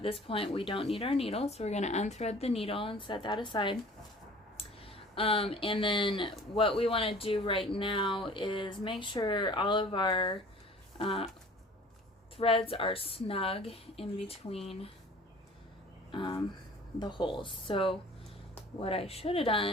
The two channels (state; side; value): normal; both; correlation 0.47